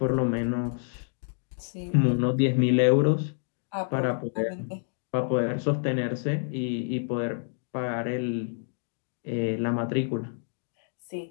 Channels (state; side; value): silent; right; digital silence